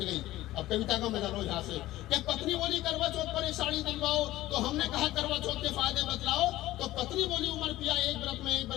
अब कविता का मजा लो यहाँ से। कि पत्नी बोली करवा चौथ पर एक साड़ी दिलवाओ, तो हमने कहा करवा चौथ के फायदे बतलाओ। तो पत्नी बोली उमर पिया एक व्रत में एक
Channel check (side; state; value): right; quieter; 16.1 dB